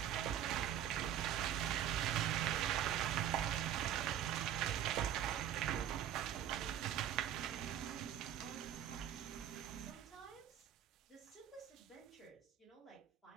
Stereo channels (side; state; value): left; quieter; 10.4 dB